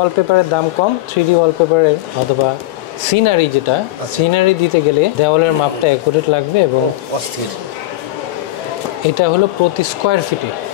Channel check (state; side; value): quieter; right; 16.6 dB